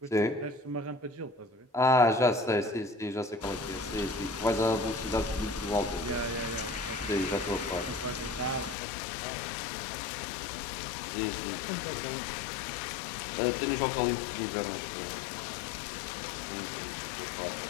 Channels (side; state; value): right; drops out; at 8.8 s